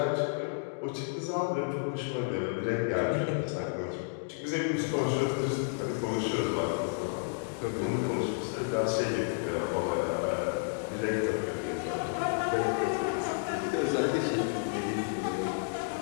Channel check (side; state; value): right; silent; digital silence